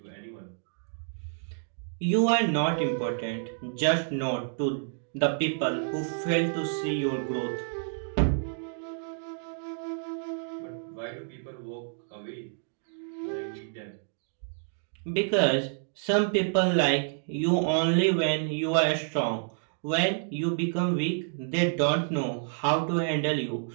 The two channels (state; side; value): silent; left; digital silence